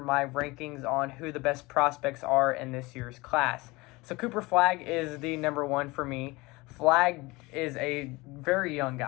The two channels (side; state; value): right; quieter; 22.8 dB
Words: my rankings on who the best prospects are in this year's class. So Cooper Flagg is the number one for me. Flagg is a very young